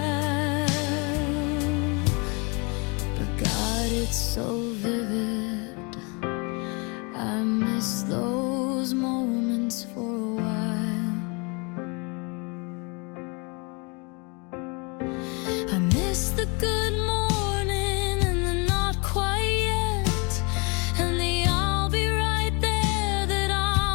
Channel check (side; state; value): right; quieter; 30.9 dB